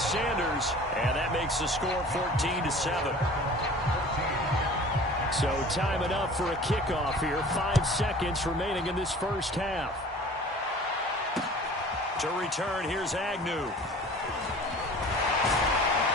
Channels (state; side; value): normal; both; correlation 0.44